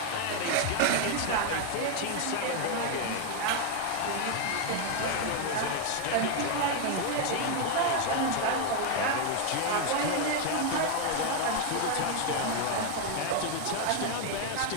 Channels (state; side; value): different; both; correlation 0.01